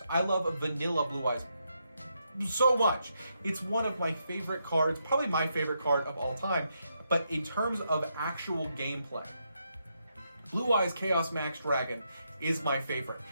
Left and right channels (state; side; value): inverted; both; correlation -0.80